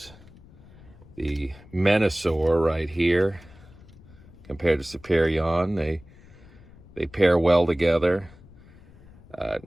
the Menasor right here compared to Superion. They pair well together. It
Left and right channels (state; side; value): noise; left; rumble, 22 dB below the sound